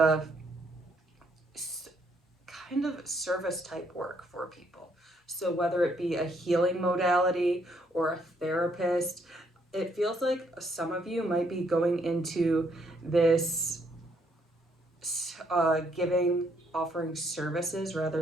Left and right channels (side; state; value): both; normal; correlation 0.70